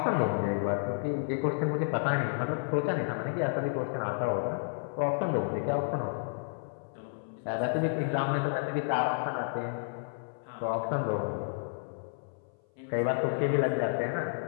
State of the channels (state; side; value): silent; right; 56 dB below the other